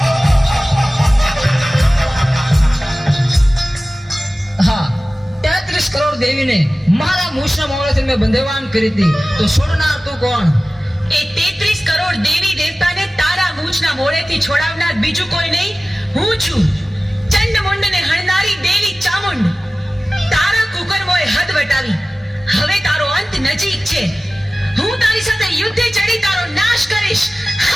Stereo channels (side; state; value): both; normal; correlation 0.97